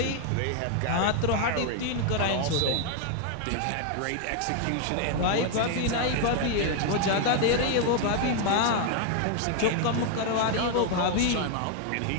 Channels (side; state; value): both; different; correlation 0.00